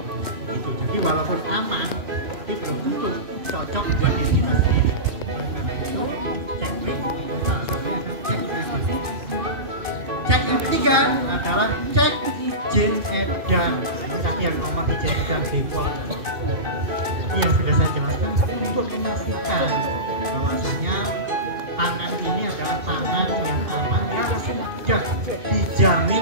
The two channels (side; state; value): left; late; 2.5 ms